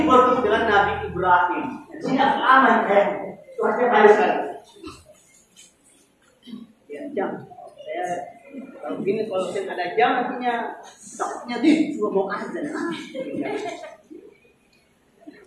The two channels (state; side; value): identical; both; correlation 1.00